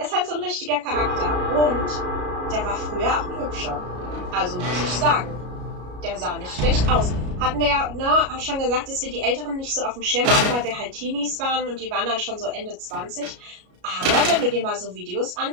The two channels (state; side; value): late; left; 33 ms